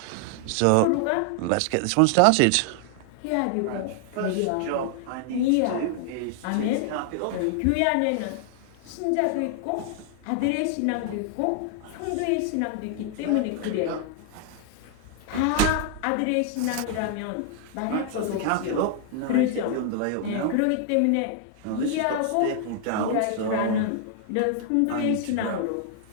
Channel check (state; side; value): different; both; correlation 0.00